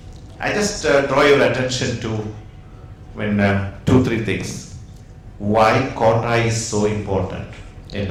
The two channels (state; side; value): identical; both; correlation 1.00